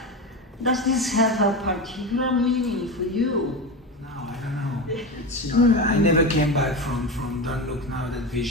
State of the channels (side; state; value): both; normal; correlation 0.21